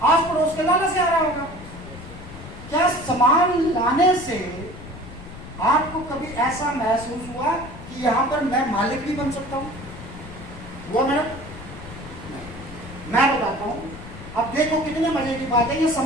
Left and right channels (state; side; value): noise; left; rumble, 14 dB below the sound